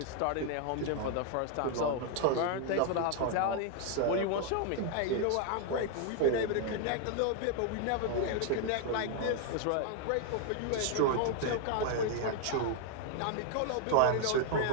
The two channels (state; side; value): different; both; correlation 0.00